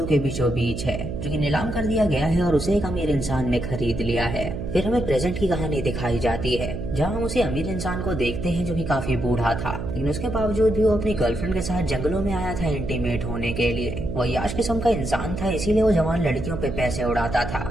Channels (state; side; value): noise; right; hum, 6 dB below the sound